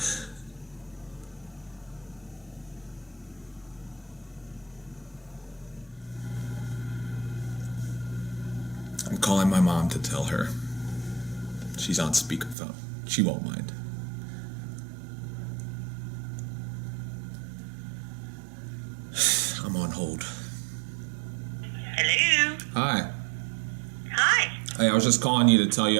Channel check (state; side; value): drops out; left; at 12.6 s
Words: I'm calling my mom to tell her. She's on speakerphone. She won't mind. I'm on hold. Hello. Hi. Hi. Hey, I was just calling you to tell you